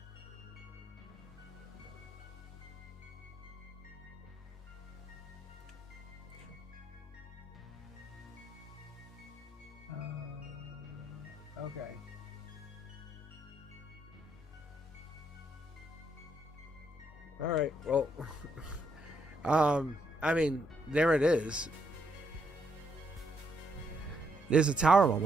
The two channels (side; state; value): both; normal; correlation 0.75